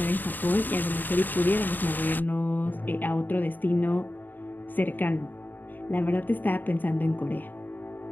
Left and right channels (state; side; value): late; right; 0.089 ms